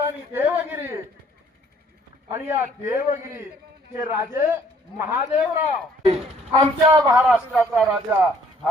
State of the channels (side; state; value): both; normal; correlation 0.61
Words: देवगिरी आणि या देवगिरीचे राजे महादेवराव, आमच्या महाराष्ट्राचा राजा